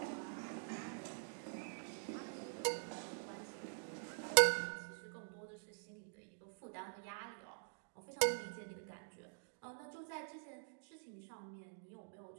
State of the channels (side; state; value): left; silent; digital silence